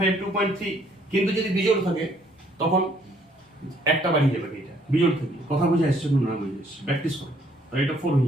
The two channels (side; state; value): both; normal; correlation 0.65